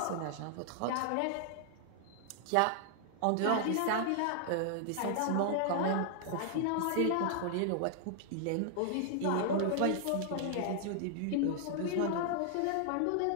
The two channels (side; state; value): both; different; correlation -0.01